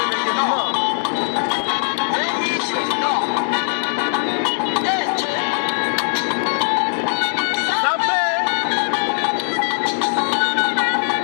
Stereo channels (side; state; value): right; silent; digital silence